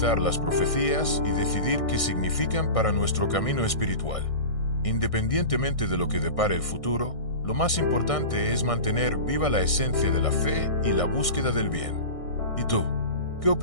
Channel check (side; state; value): right; late; 1.6 ms